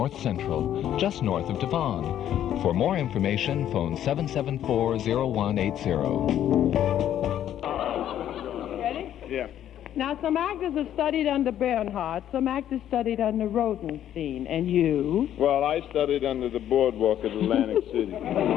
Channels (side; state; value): right; quieter; 11.0 dB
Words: Central, just north of Devon. For more information, phone 774-0180. Ready? Yeah. Now, some actors have studied under Bernhardt, some actors studied under Rodenstein, and you? Well, I studied under the boardwalk at Atlantic City.